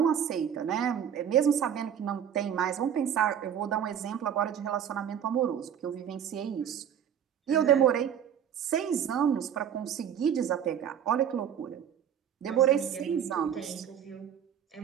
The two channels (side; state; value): left; quieter; 9.0 dB